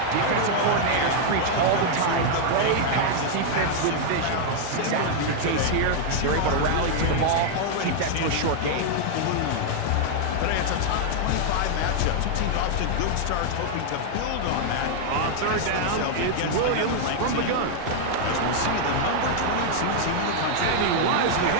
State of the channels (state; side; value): different; both; correlation 0.00